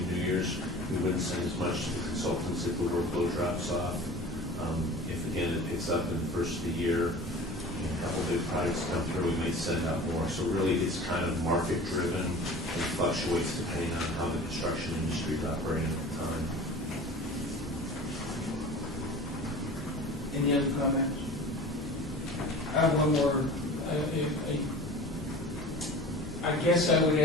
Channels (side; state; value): both; normal; correlation 0.39